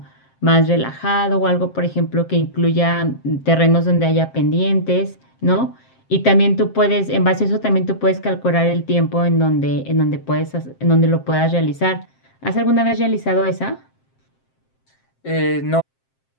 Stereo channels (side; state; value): right; late; 7.6 ms